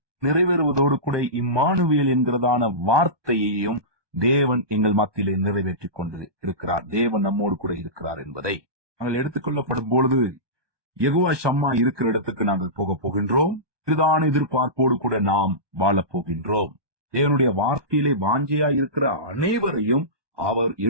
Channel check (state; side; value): late; left; 1.2 ms